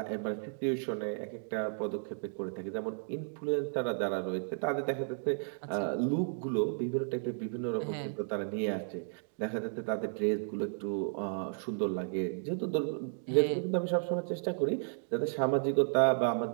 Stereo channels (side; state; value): left; silent; digital silence